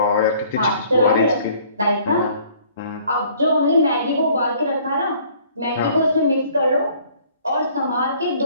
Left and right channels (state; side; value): inverted; both; correlation -0.57